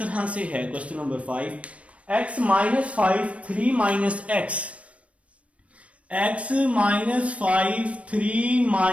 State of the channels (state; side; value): late; left; 0.064 ms